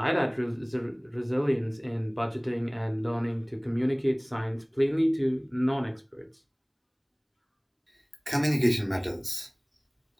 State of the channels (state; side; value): identical; both; correlation 1.00